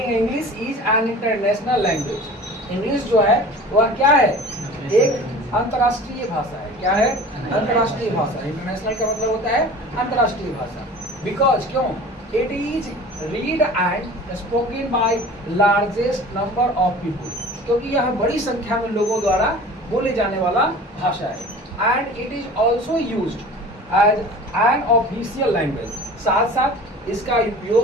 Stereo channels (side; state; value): both; normal; correlation 0.41